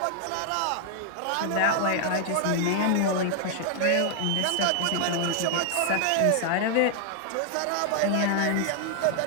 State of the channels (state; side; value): different; both; correlation 0.00